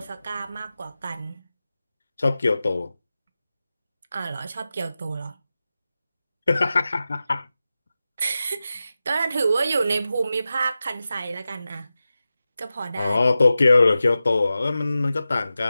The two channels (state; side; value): inverted; both; correlation -0.93